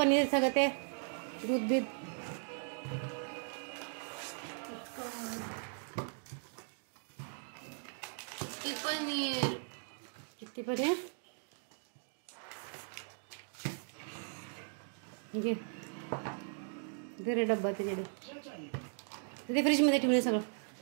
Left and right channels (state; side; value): silent; left; 53 dB below the other